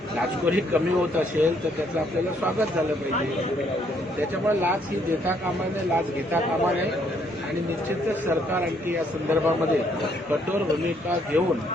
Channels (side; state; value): both; normal; correlation 0.69